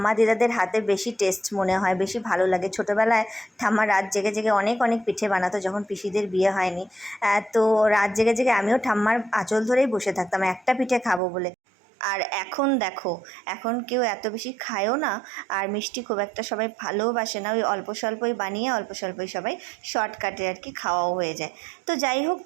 দিদাদের হাতে বেশি টেস্ট মনে হয়, বেশি ভালো লাগে। ছোটোবেলায় ঠাম্মা রাত জেগে জেগে অনেক অনেক পিঠে বানাতো, যখন পিসিদের বিয়ে হয়নি। তো রাত জেগে জেগে আমিও ঠাম্মার আঁচল ধরেই বসে থাকতাম একটা পিঠে খাবো বলে। আর এখন দেখো, এখন কেউ এত বেশি খায়ও না, আর মিষ্টি খুব একটা সবাই ভালোবাসে না। ওই অল্প স্বল্পই বানিয়ে অল্প স্বল্পই সবাই শর্টকাটে আর কি খাওয়াও হয়ে যায়। তো যাই হোক,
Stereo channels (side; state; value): left; drops out; at 11.2 s